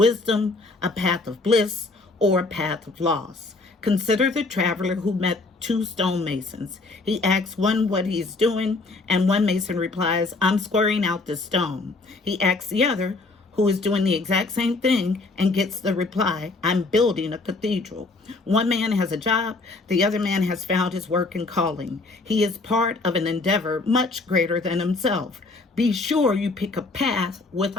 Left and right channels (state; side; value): quieter; right; 3.5 dB